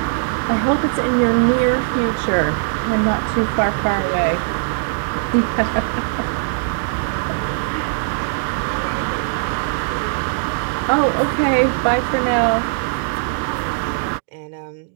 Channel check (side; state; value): left; silent; digital silence